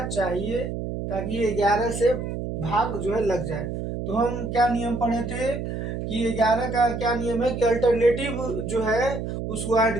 चाहिए ताकि ये 11 से भाग जो है लग जाए। तो हम क्या नियम पढ़े थे कि 11 का क्या नियम है कि अल्टरनेटिव जो है उसको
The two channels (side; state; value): right; noise; hum, 5 dB below the sound